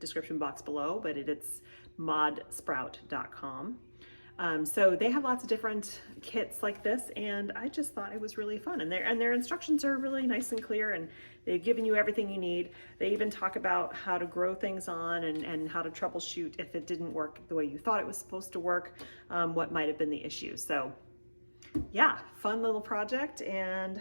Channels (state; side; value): inverted; both; correlation -1.00